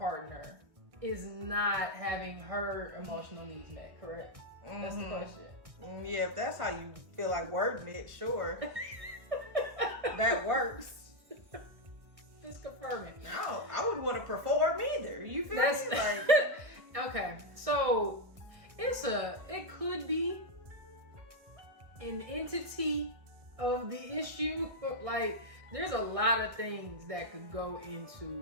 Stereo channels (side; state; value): left; late; 1.9 ms